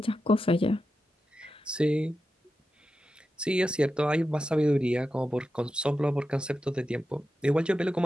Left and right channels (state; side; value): normal; both; correlation 0.90